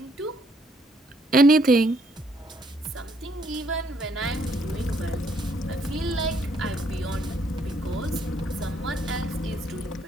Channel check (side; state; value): both; normal; correlation 0.68